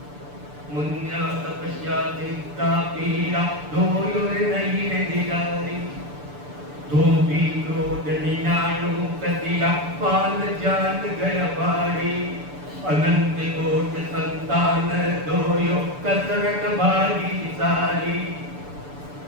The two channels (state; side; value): late; left; 6.9 ms